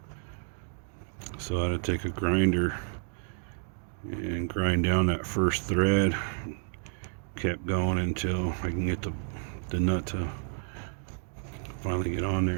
so I had to take a grinder and grind down that first thread. Kept going until I can get the nut to finally get on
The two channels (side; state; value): left; silent; 58 dB below the other